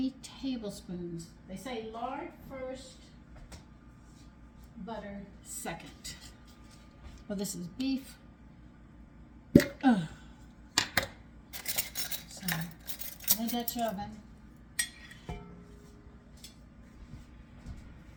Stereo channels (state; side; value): identical; both; correlation 1.00